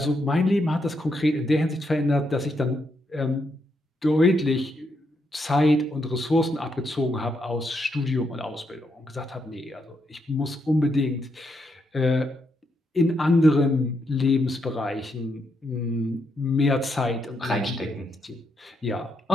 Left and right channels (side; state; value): both; normal; correlation 0.79